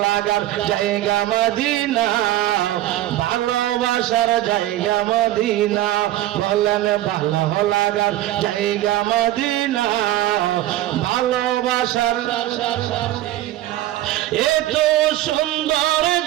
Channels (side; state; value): left; quieter; 14.7 dB